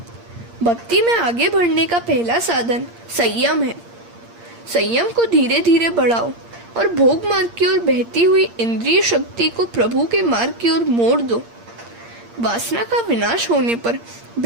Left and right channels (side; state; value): left; late; 8.6 ms